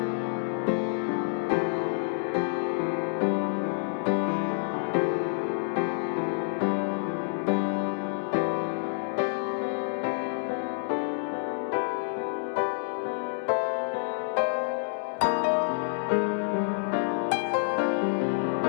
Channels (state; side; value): silent; right; digital silence